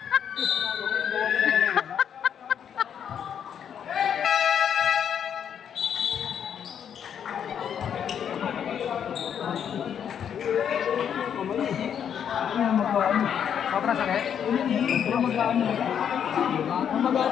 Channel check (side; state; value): right; quieter; 8.5 dB